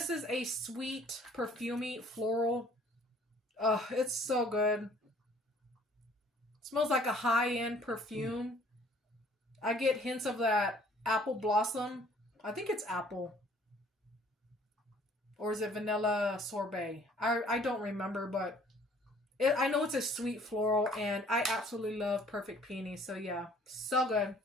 is a sweet, perfumey, floral. It's so good. It smells like a high-end perfume. I get hints of that apple blossom. I think it's apple. Or is it vanilla sorbet? I don't remember, but I know it's a sweet floral. And I absolutely love Perfect Peony. So yeah, so good.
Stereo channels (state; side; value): normal; both; correlation 0.57